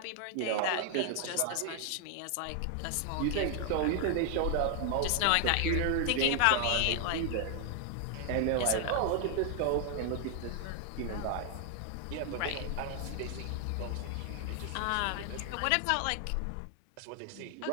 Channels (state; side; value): different; both; correlation 0.00